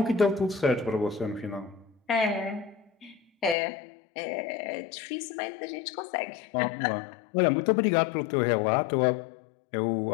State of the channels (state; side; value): drops out; right; at 3.6 s